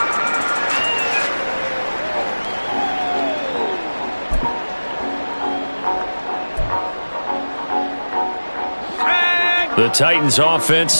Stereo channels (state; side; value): inverted; both; correlation -1.00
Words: The Titans offense